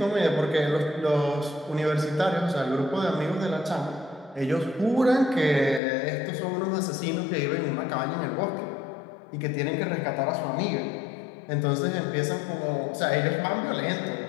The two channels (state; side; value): drops out; right; at 5.8 s